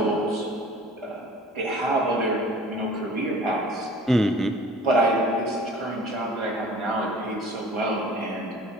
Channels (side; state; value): both; normal; correlation 0.46